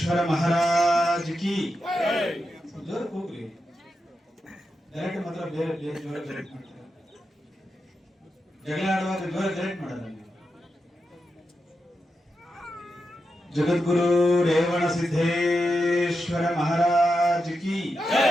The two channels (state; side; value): normal; both; correlation 0.88